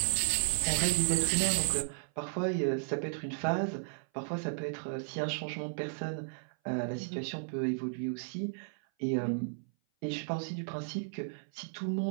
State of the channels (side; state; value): left; silent; 55 dB below the other